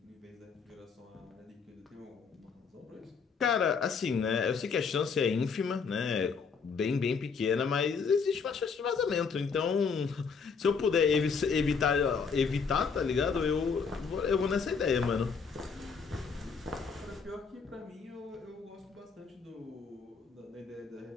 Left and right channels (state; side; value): quieter; right; 5.5 dB